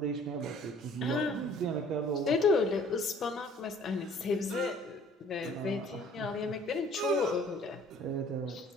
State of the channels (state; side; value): normal; both; correlation 0.54